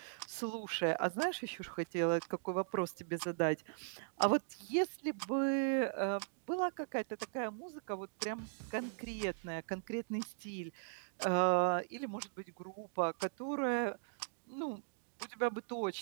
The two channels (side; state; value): left; silent; digital silence